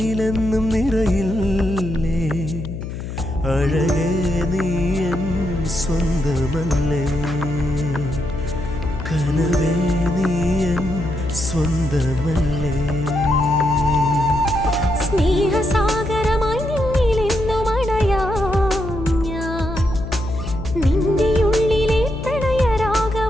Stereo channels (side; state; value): left; noise; hum, 7 dB below the sound